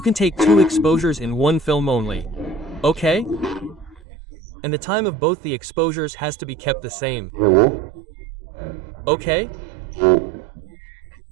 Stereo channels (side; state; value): left; drops out; at 4.0 s